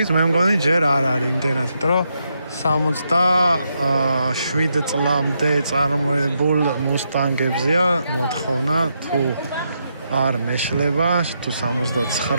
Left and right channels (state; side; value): inverted; both; correlation -0.81